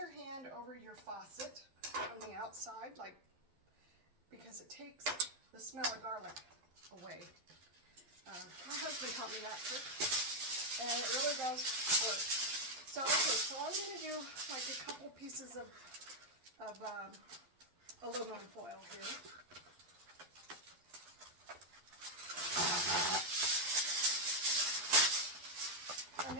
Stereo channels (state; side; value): late; left; 12 ms